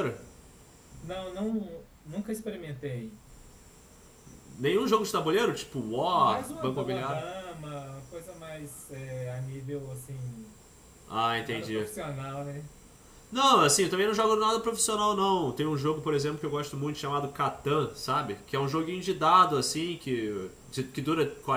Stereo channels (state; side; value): identical; both; correlation 1.00